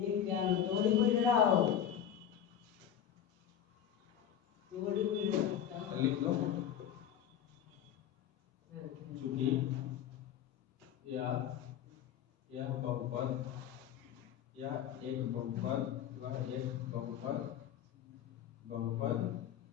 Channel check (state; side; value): quieter; right; 9.7 dB